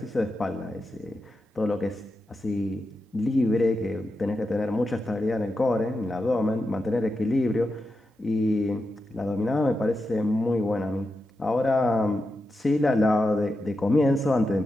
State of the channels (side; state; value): both; normal; correlation 0.89